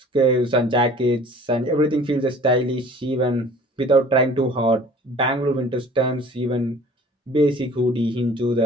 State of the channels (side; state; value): both; normal; correlation 0.48